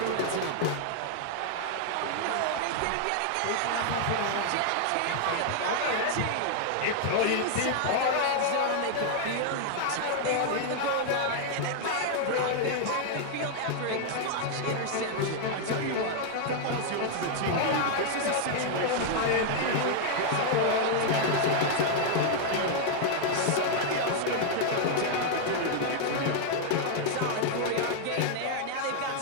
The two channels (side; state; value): both; different; correlation 0.00